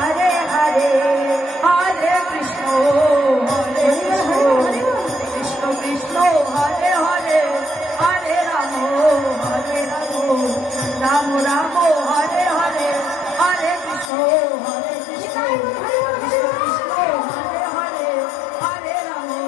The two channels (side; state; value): right; drops out; at 14.1 s